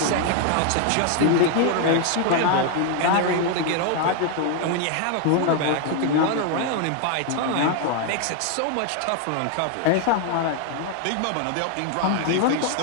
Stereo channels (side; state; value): both; different; correlation 0.00